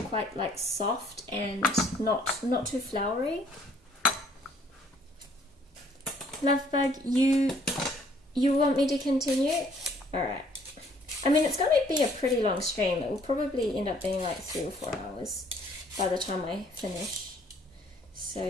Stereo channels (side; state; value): both; normal; correlation 0.61